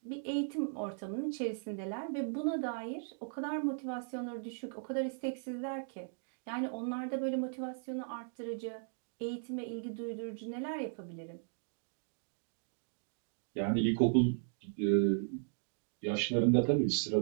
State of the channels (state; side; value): silent; left; digital silence